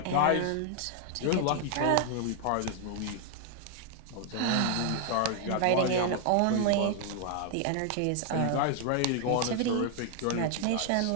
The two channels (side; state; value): both; different; correlation 0.00